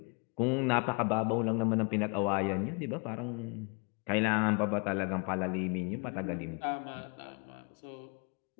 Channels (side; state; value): right; quieter; 34.7 dB